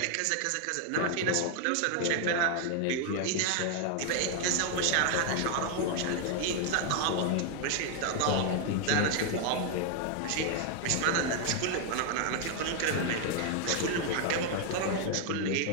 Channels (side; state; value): both; different; correlation 0.01